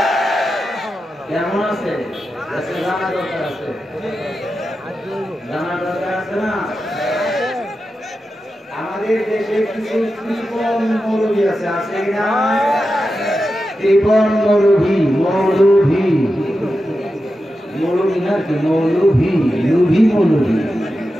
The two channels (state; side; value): normal; both; correlation 0.91